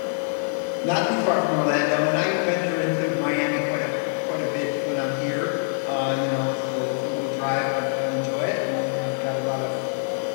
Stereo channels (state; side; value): silent; right; digital silence